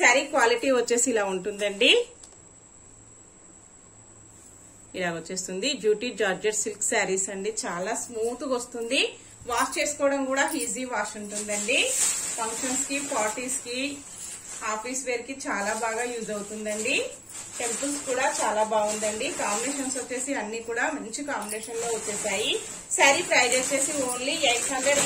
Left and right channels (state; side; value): identical; both; correlation 1.00